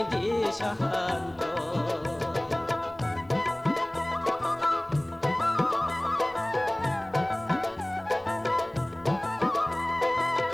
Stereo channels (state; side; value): noise; left; hum, 29 dB below the sound